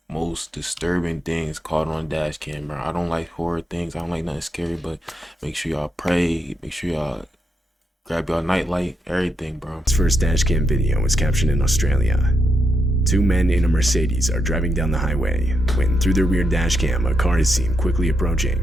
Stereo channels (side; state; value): both; normal; correlation 0.82